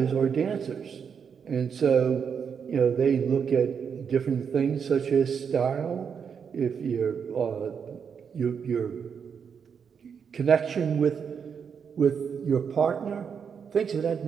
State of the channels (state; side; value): quieter; left; 6.8 dB